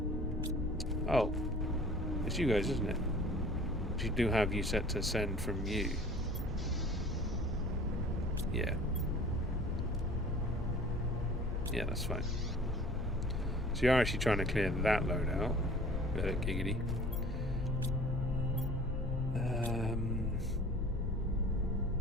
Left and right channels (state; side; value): normal; both; correlation 0.47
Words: Oh, it's you guys, isn't it? You do have you set to send from you. Yeah. Yeah, that's fine. So you're actually trying to clear that load out. Giggity.